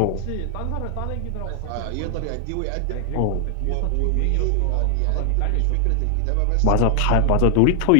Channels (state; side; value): different; both; correlation 0.00